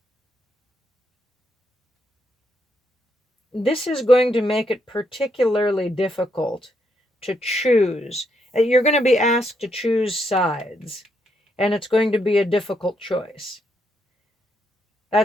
This is going to make it particularly difficult to choose. You're going to be asked to choose sides, and it's going to be a difficult choice.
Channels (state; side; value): normal; both; correlation 0.77